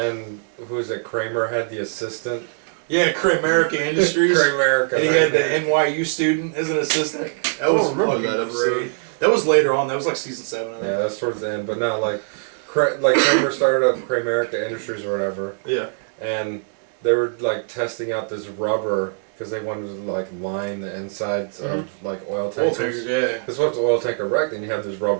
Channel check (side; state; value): left; silent; digital silence